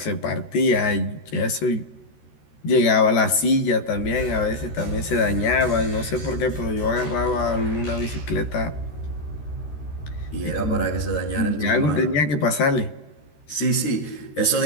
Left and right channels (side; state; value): right; late; 13 ms